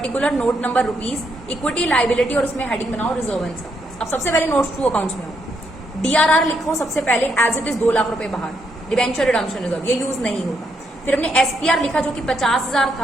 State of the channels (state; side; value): normal; both; correlation 0.77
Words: note number rupees, equity liability, और उसमें हेडिंग बनाओ रिजर्व एंड सरप्लस। अब सबसे पहले नोट्स टू अकाउंट्स में आओ, डीआरआर लिखो सबसे पहले एज इट इज 2 लाख रुपए बाहर, डिबेंचर रिडम्पशन रिजर्व ये यूज नहीं होगा। फिर हमने एसपीआर लिखा जो कि 50,000